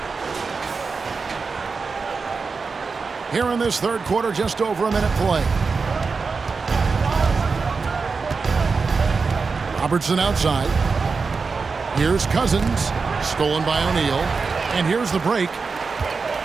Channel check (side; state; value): left; quieter; 4.7 dB